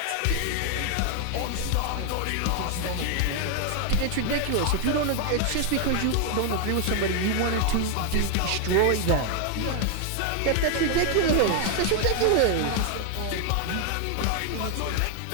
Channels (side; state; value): both; different; correlation 0.00